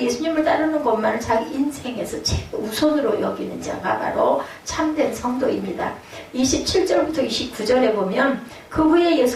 따르는 것만을 자기 인생에서 우선으로 여기는 자가 바로 참된 성도입니다. 27절부터 29절에 보면 그 후에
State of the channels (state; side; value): identical; both; correlation 1.00